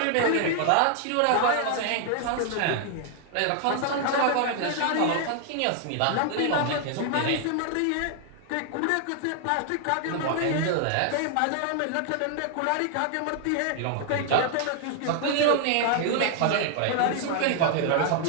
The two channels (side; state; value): both; different; correlation 0.00